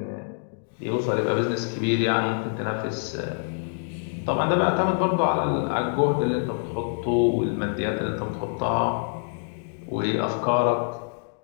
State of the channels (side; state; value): right; silent; digital silence